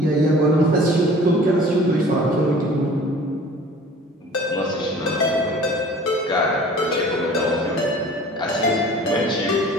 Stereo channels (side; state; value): both; normal; correlation 0.46